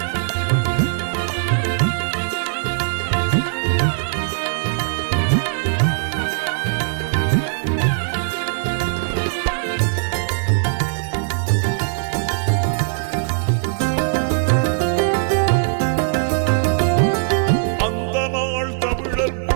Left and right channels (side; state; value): left; silent; digital silence